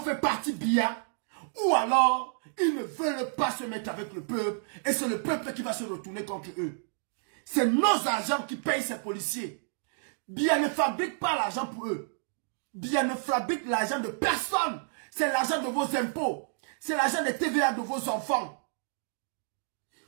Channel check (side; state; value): left; silent; digital silence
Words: partie Biya. Ou alors, ils ne veulent pas se mettre avec le peuple. Et c'est le peuple qui va se retourner contre eux. C'est nos agents qui payent ces policiers. Biya ne fabrique pas l'argent pour eux. Biya ne fabrique l'argent de personne. C'est l'argent de vos impôts. C'est l'argent des TVA de vos enfants.